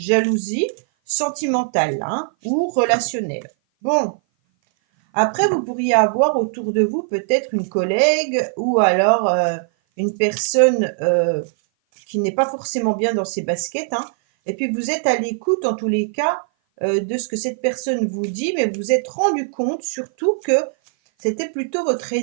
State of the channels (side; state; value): left; silent; 57 dB below the other